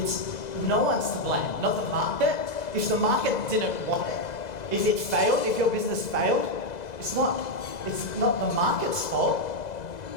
no one's to blame, not the market. If the market didn't want it, if it failed, if your business failed, it's not the market's fault.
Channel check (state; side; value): late; right; 2.0 ms